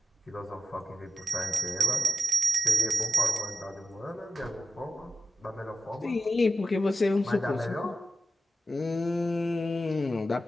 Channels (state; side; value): normal; both; correlation 0.93